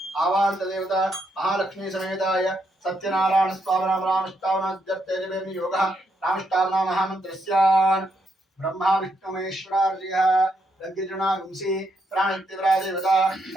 आवाहन्तदेवता महालक्ष्मी समेताय सत्यनारायण स्वामिनां रामष्टावनाद्यर्थे योगः रामष्टावना महामन्त्रस्यान् ब्रह्मा विष्णु महेश्वरार्यः लग्गजनागुंसि प्राणित्यवरादेवता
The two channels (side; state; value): both; normal; correlation 0.78